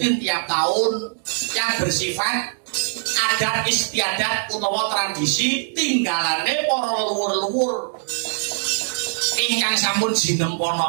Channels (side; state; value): left; silent; 63 dB below the other